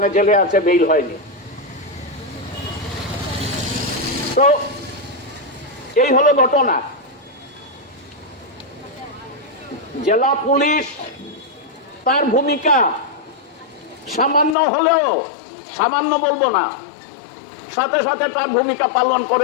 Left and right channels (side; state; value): right; drops out; at 14.6 s